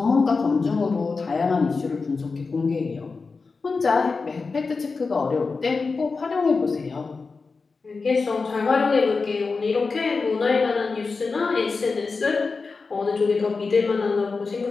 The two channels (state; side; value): quieter; right; 4.4 dB